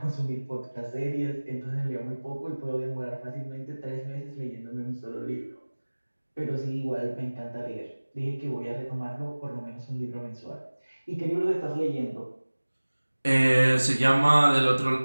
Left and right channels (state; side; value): inverted; both; correlation -1.00